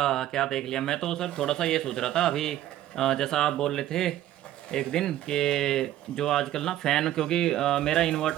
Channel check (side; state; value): left; quieter; 13.1 dB